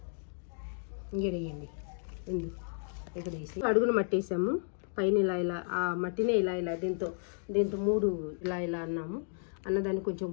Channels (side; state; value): right; silent; digital silence